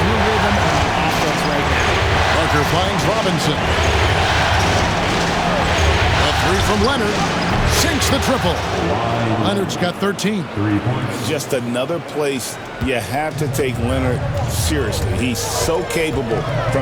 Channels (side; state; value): both; identical; correlation 1.00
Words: the rhythm on offense right now. Parker finds Robinson. A 3 from Leonard. Sinks the triple. Leonard's got 13. 3 points. Just another place you have to take Leonard seriously. He's so capable